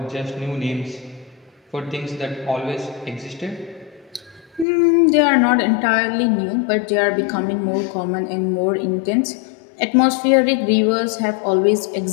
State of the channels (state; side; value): drops out; right; at 4.7 s